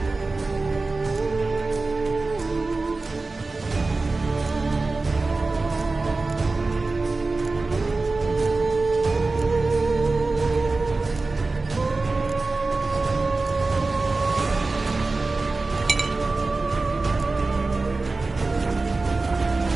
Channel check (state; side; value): quieter; left; 3.6 dB